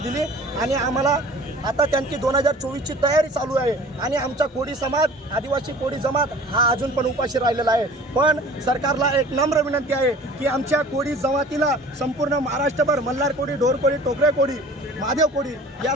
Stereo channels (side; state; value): both; normal; correlation 0.46